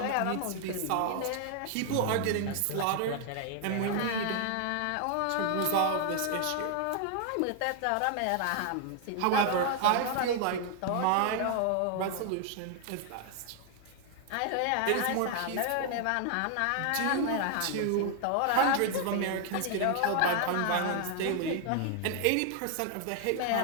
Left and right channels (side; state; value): both; different; correlation 0.00